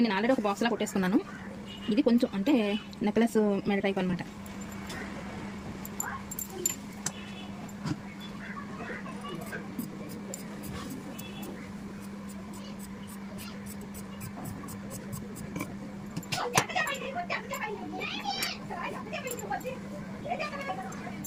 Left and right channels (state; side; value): identical; both; correlation 1.00